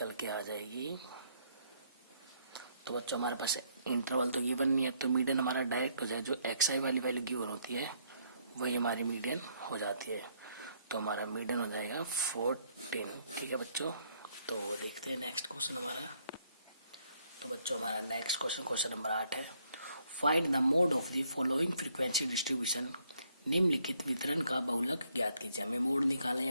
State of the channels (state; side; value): inverted; both; correlation -0.70